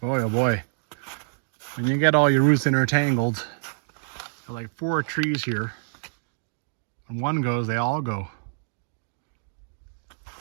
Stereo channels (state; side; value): silent; left; digital silence